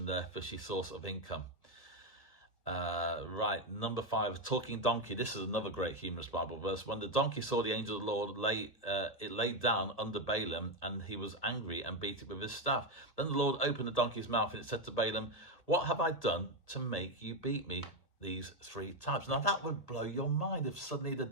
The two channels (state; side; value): late; right; 1.7 ms